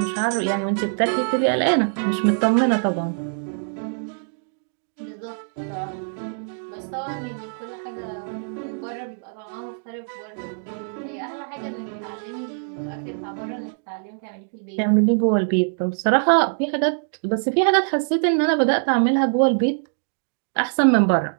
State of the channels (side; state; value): left; silent; digital silence